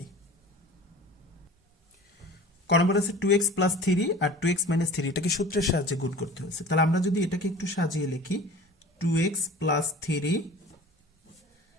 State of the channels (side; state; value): both; normal; correlation 0.41